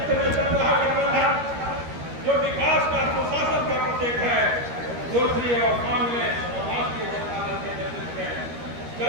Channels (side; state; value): left; late; 13 ms